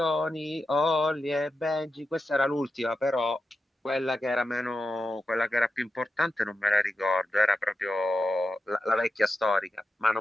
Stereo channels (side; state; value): both; normal; correlation 0.89